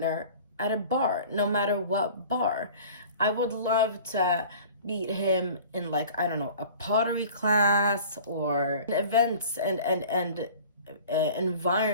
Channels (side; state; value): both; inverted; correlation -0.44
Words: at a bar, no matter what bar. I would love to meet him in, like, I don't know, a pottery class or events and